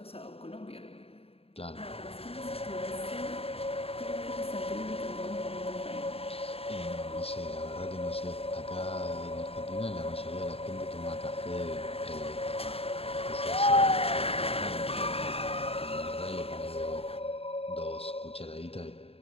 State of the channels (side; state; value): right; late; 0.28 ms